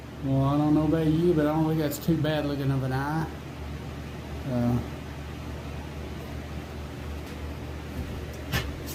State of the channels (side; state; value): both; identical; correlation 1.00